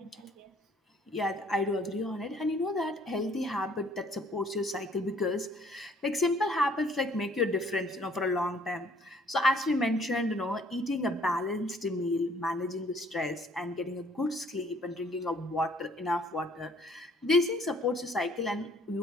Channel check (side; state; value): both; normal; correlation 0.60